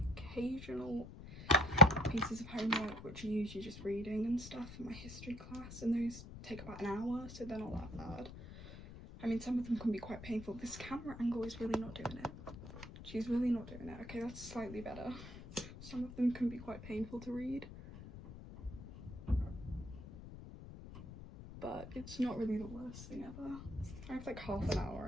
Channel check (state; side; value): noise; left; rumble, 13 dB below the sound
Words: occasional pieces of homework, which are usually just reading and stuff in my history class, and those take about an hour, so they're not that bad. I mean, some of them can be quite painful. This camera angle is really not doing it. She's really not doing it. Okay, that's slightly better. Some of them can be quite painful to read, but it's not really the worst thing ever. I have like half an hour,